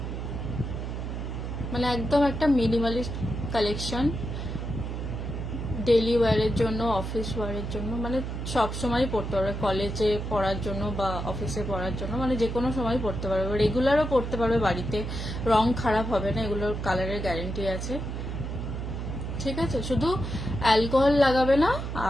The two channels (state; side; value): noise; right; hum, 5 dB below the sound